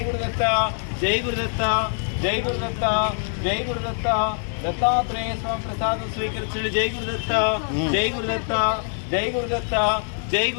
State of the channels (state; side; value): silent; right; digital silence